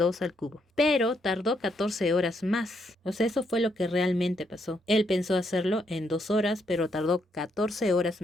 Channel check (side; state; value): both; normal; correlation 0.76